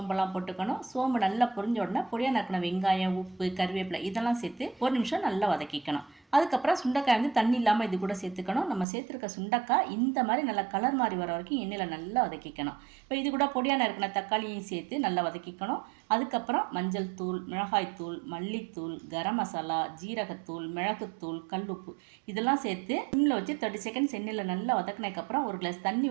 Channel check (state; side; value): drops out; left; at 8.8 s